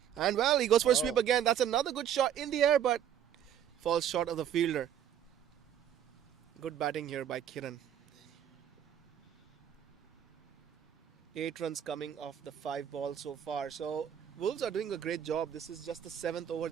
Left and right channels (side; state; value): left; quieter; 9.6 dB